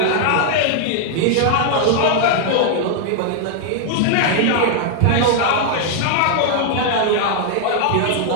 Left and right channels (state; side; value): different; both; correlation 0.00